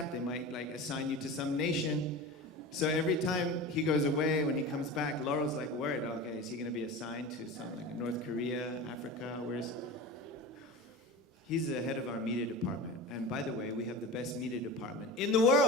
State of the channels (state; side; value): normal; both; correlation 0.31